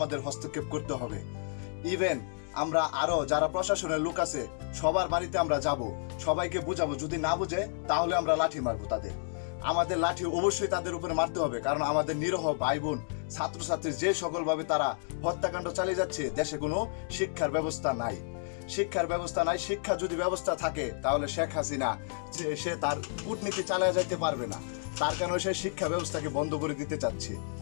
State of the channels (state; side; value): silent; right; digital silence